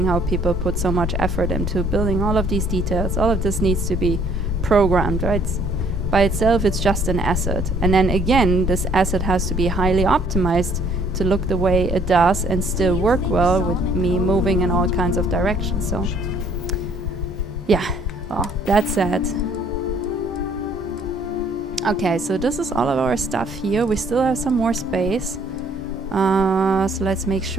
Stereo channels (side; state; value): both; normal; correlation 0.61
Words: how people put so much effort into building all of these details. All of this needs to be programmed, right? By itself, it's just an asset. And then again, this asset has to be highly optimized to look the way it does and still work well with me moving in all kinds of directions. So yeah, well, that's it. Okay, so this is all of our stuff here. We still have some more space. So let's make